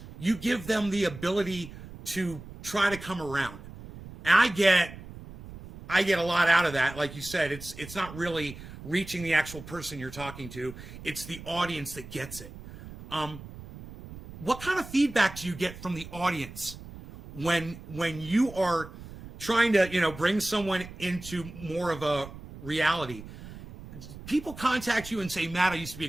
you give them the ability to try to come around. And I get a lot out of that. Like you said, it's not really reaching the actual person you're talking to. It's the audience that gets it. What kind of feedback do you get from the audience when you are trying to, bring someone into more of a reality? People contact you and say, Matt, I used to be a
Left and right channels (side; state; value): right; noise; rumble, 15 dB below the sound